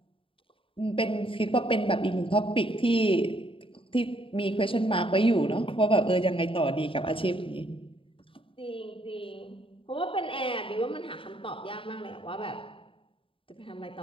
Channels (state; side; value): late; right; 0.26 ms